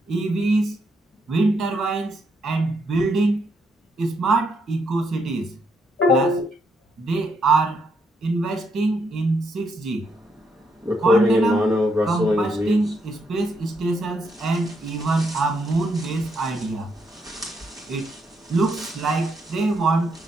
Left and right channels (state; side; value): normal; both; correlation 0.77